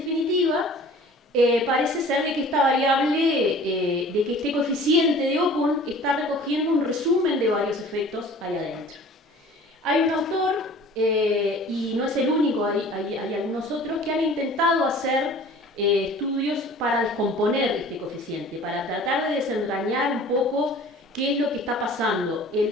parece ser de que esta variable, de que este coeficiente de Okun está recogiendo un resumen de varios efectos ahí adentro. Hay un autor, y no es el único, hay algunos otros que han intentado hacer estudios para descomponer este coeficiente, para tratar de desentrañar un poco qué es lo que está pasando.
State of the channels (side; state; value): both; normal; correlation 0.46